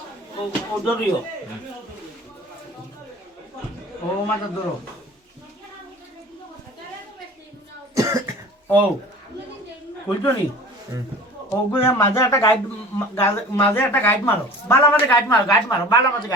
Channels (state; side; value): normal; both; correlation 0.41